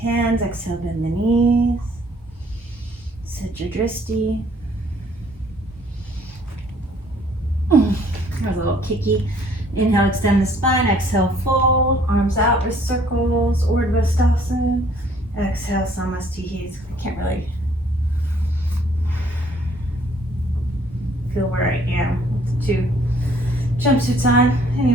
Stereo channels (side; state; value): both; normal; correlation 0.60